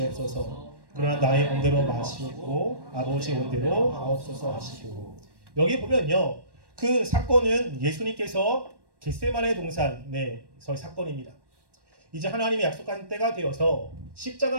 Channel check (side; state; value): left; late; 1.1 ms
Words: 그러나 나의 온대로 마시옵고 아버지 온대로 하옵소서 하시고. 여기 보면요. 그 사건은 예수님께서 겟세마네 동산에서의 사건입니다. 이제 하나님이 약속한 때가 되어서